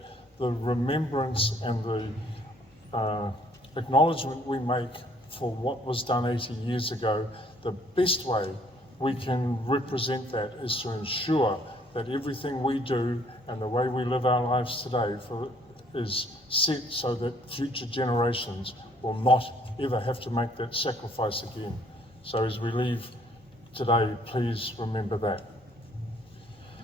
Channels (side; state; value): both; normal; correlation 0.62